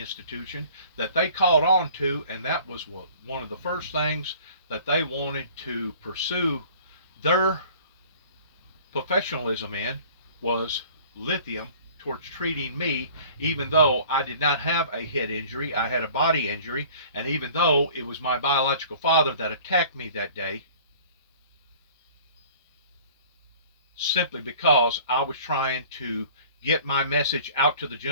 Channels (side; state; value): both; inverted; correlation -0.49